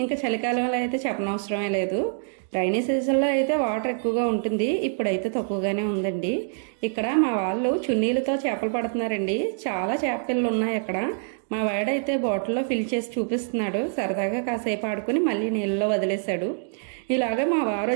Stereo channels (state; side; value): silent; left; digital silence